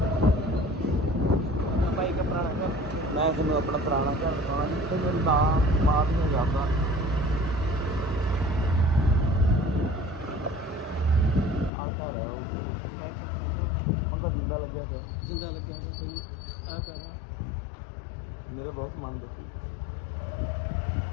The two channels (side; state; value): right; drops out; at 11.7 s